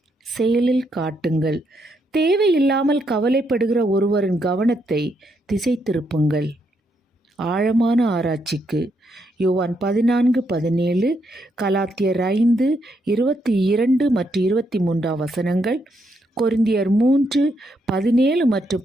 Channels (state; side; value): normal; both; correlation 0.78